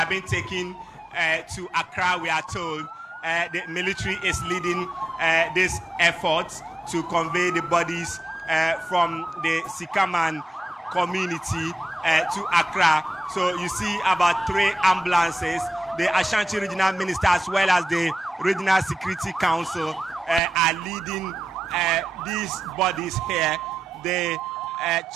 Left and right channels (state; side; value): normal; both; correlation 0.91